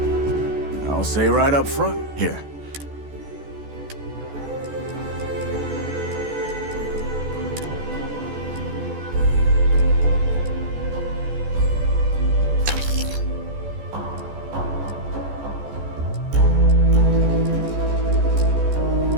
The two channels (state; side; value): late; left; 14 ms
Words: I'll say right up front. Here.